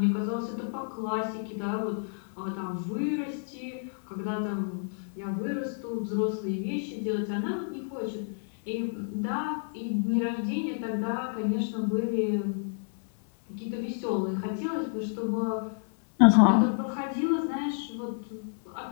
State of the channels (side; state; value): right; silent; digital silence